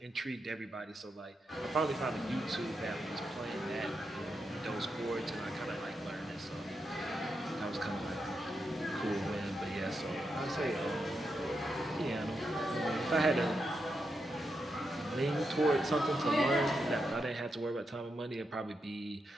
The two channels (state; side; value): normal; both; correlation 0.85